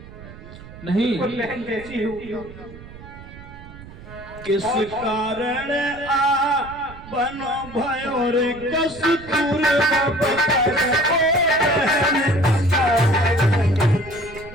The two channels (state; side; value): noise; right; rumble, 17 dB below the sound